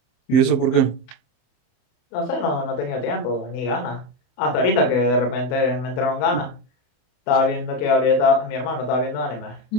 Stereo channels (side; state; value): right; late; 28 ms